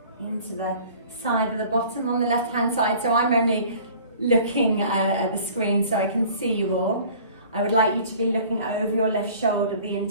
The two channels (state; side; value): inverted; both; correlation -0.48